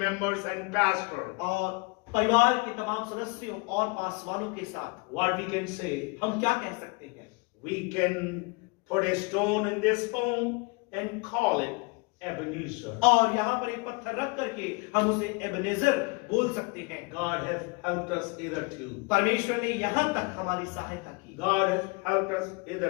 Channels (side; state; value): right; quieter; 29.5 dB